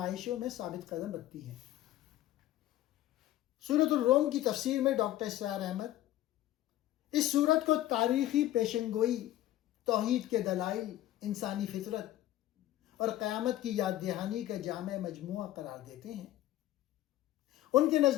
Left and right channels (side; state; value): right; quieter; 14.2 dB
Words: میں ثابت قدم رکھتی ہیں۔ سورۃ الروم کی تفسیر میں ڈاکٹر اسرار احمد اس سورت کو تاریخی پیشنگوئی، توحید کے دلائل، انسانی فطرت اور قیامت کی یاد دہانی کا جامع مجموعہ قرار دیتے ہیں۔ ان کے